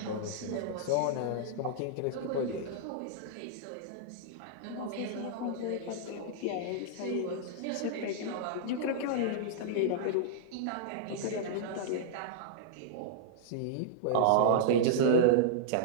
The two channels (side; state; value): both; different; correlation -0.02